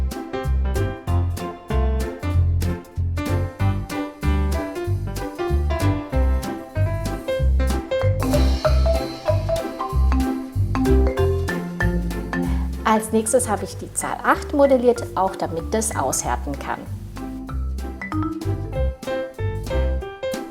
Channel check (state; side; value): identical; both; correlation 1.00